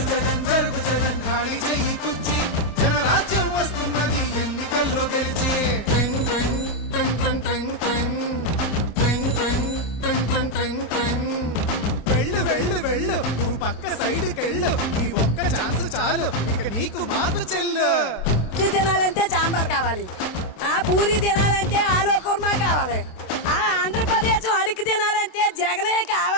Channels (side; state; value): right; late; 27 ms